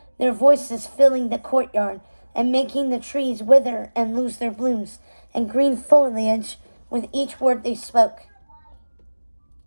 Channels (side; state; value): both; inverted; correlation -1.00